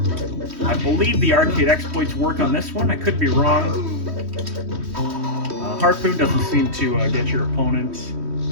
I believe the arcade exploits work on this one. I could be wrong. Harpoon doesn't seem to get your opponent.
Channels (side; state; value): left; late; 3.1 ms